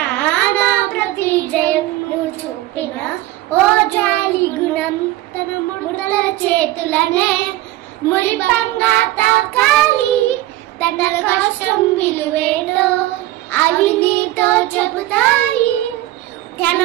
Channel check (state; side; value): quieter; left; 16.0 dB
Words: నా ప్రతి జయం నువ్వు చూపిన ఓ జాలి గుణం. తన ముడతల చేతులనే మురిపంగా తాకాలి. తన కష్టం విలువేలో అవి నీతో చెబుతాయి. తన